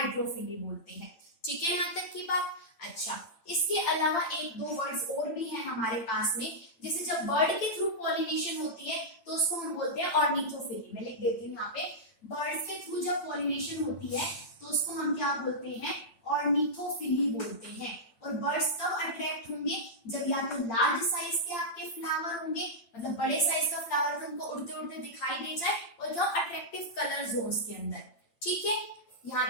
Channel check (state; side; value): late; right; 8.8 ms